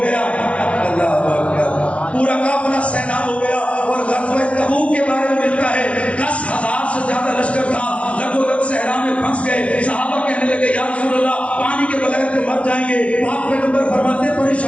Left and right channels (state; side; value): late; right; 0.062 ms